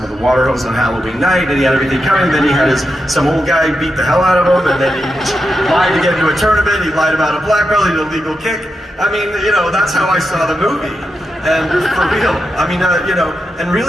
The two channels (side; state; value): both; normal; correlation 0.87